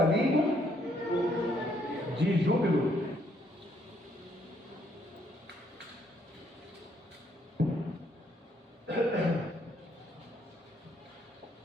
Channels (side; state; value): both; normal; correlation 0.70